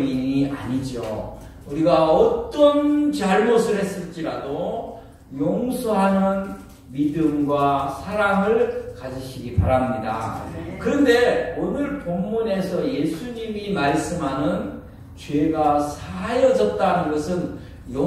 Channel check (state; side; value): identical; both; correlation 1.00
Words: 아니죠. 우리가 어떤 잘못을 했을지라도 용서하는 믿음과 사랑을 가지시기 바랍니다. 그런데 오늘 본문에서 예수님이 말씀하는 죄가 사하여졌다는 것은